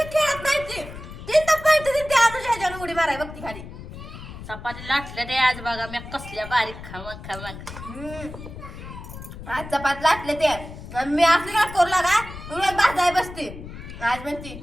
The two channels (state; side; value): noise; left; rumble, 12 dB below the sound